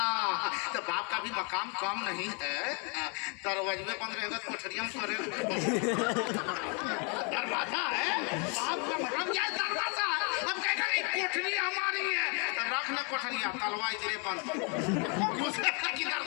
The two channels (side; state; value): right; quieter; 35.4 dB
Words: तो बाप का भी मकाम कम नहीं है। दरवाजे में बंद रहेगा तो कोठरिया में करे। दरवाजा है, बाप का मतलब क्या है? दरवाजा है। अब कहेगा नहीं कोठरी हमारी है, तो रखना कोठरिया, तलवा इधरे बंद किधर